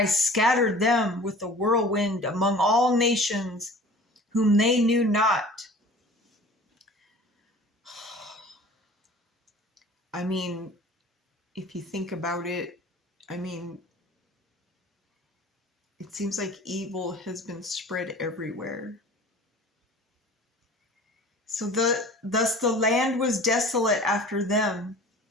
scattered them with a whirlwind among all nations, whom they knew not. I mean, if you think about it, I mean, it seems like evil has been spread everywhere. So thus the land was desolate after them,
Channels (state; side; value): normal; both; correlation 0.44